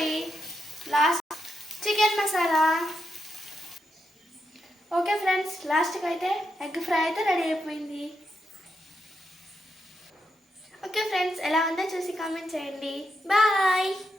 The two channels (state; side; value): normal; both; correlation 0.84